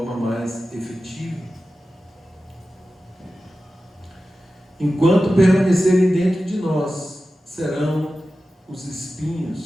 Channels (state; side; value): normal; both; correlation 0.94